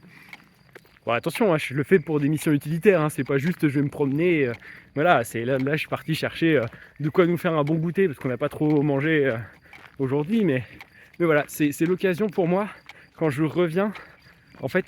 Bon, attention, hein, je le fais pour des missions utilitaires, hein, c'est pas juste je vais me promener. Voilà, c'est là je suis parti chercher de quoi nous faire un bon goûter, parce qu'on n'a pas trop mangé aujourd'hui, mais voilà, c'est l'occasion pour moi, quand je reviens, en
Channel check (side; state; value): both; identical; correlation 1.00